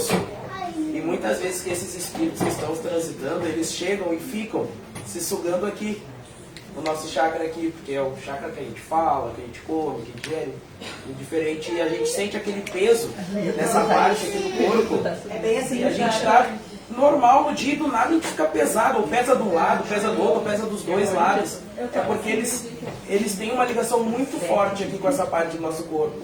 E muitas vezes que esses espíritos que estão transitando, eles chegam e ficam se sugando aqui, no nosso chakra aqui, porque é o chakra que a gente fala, que a gente come, que a gente gere, indiferente, e a gente sente aquele peso nessa parte aqui do corpo. É bem assim. E a gente está normal no dia e do nada a gente fica pesado, ou pesa de um lado, pesa do outro, ou pesa dos dois lados. É porque eles têm uma ligação muito forte aqui com essa parte do nosso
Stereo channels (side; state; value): both; identical; correlation 1.00